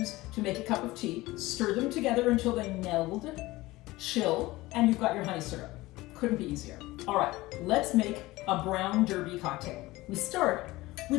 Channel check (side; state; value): right; quieter; 19.3 dB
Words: to make a cup of tea. Stir them together until they meld, chill, and you've got your honey syrup. Couldn't be easier. All right, let's make a Brown Derby cocktail. We start